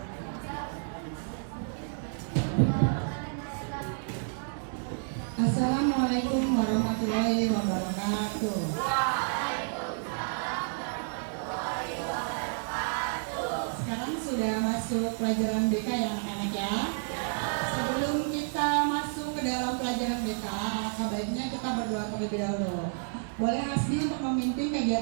warahmatullahi wabarakatuh. Sekarang sudah masuk pelajaran BK ya anak-anak ya. Sebelum kita masuk ke dalam pelajaran BK, sebaiknya kita berdoa terlebih dahulu. Boleh Hasbi untuk memimpin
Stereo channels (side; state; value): left; silent; 58 dB below the other